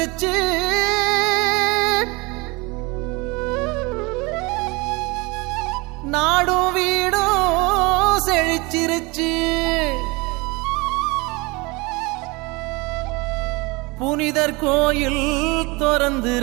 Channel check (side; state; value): left; quieter; 25.7 dB